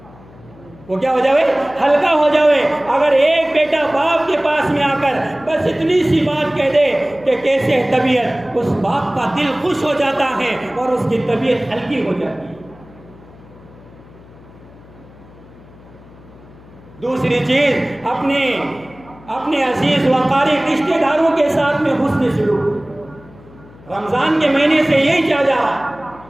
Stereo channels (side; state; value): left; noise; hum, 23 dB below the sound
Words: وہ کیا ہو جائے؟ ہلکا ہو جائے۔ اگر ایک بیٹا باپ کے پاس میں آ کر بس اتنی سی بات کہہ دے کہ کیسے طبیعت، اس باپ کا دل خوش ہو جاتا ہے اور اس کی طبیعت ہلکی ہو جاتی ہے۔ دوسری چیز، اپنے عزیز و قریب رشتہ داروں کے ساتھ میں حسن سلوک۔ رمضان کے مہینے سے یہی چاہ جا رہا